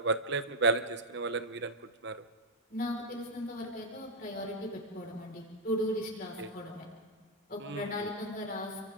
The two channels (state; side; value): normal; both; correlation -0.03